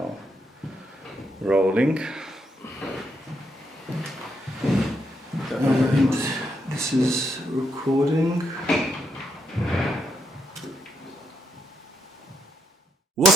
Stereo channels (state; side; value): normal; both; correlation 0.78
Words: rolling. And this is recording.